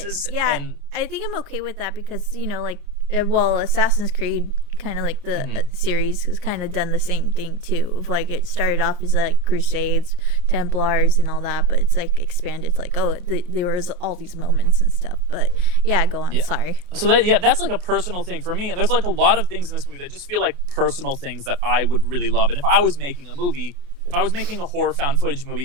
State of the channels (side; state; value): left; late; 28 ms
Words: Yeah, and I think I'm okay with that, because, you know, like, well, Assassin's Creed, kind of like the series, has kind of done the same thing too. Of like, it started off as like Crusades, Templars, and all that, but it's like expanded to like, oh, there was all these moments and stuff. But yeah, go on. Yeah. Sorry. So that's like a personal thing for me, and there's like a lot of things in this movie that just feel like personal things that I would really love. And if I was making a horror found footage